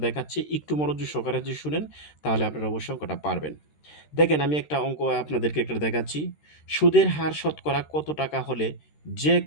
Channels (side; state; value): right; late; 13 ms